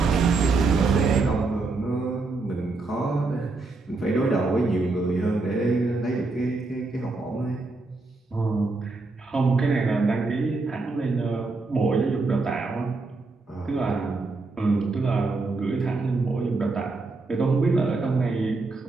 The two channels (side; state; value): left; quieter; 3.7 dB